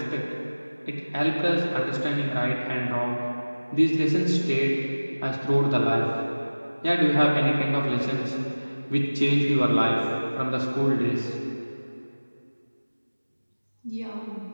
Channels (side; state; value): both; inverted; correlation -1.00